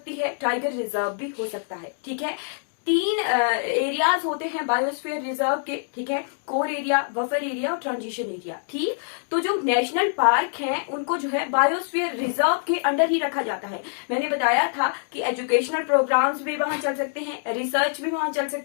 है, टाइगर रिजर्व भी हो सकता है, ठीक है। 3 एरियाज होते हैं बायोस्फीयर रिजर्व के, ठीक है, कोर एरिया, बफर एरिया और ट्रांजिशन एरिया, ठीक। तो जो नेशनल पार्क हैं उनको जो है बायोस्फीयर रिजर्व के अंडर ही रखा जाता है। मैंने बताया था कि एजुकेशनल प्रोग्राम्स भी वहां चल सकते हैं, रिसर्च भी वहां चल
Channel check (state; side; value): silent; right; digital silence